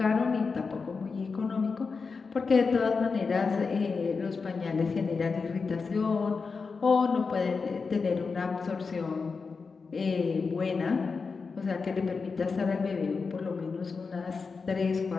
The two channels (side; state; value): right; quieter; 4.8 dB